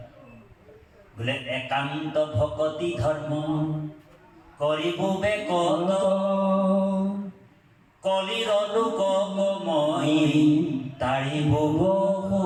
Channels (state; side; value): identical; both; correlation 1.00